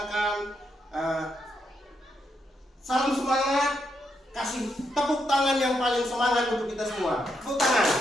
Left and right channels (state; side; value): normal; both; correlation 0.80